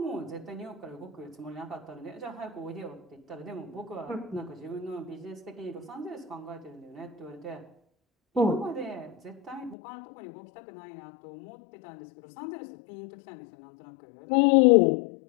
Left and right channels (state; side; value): drops out; right; at 9.8 s